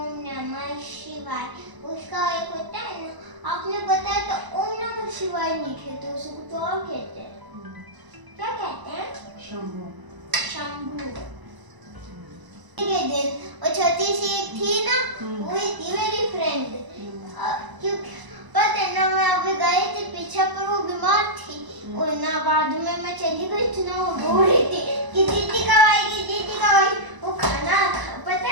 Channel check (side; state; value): left; late; 1.0 ms